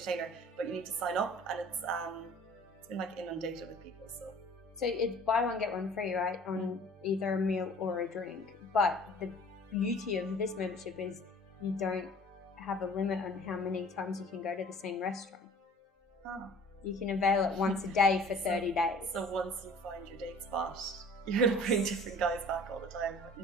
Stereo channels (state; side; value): normal; both; correlation 0.48